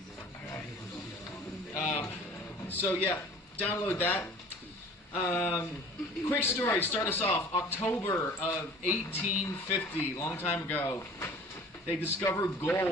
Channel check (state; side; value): normal; both; correlation 0.46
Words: All right. So yeah, download that. Quick story, start us off. October of 1850, long time ago, they discovered